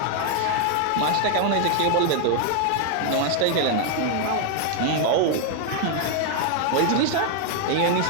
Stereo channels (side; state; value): both; different; correlation 0.00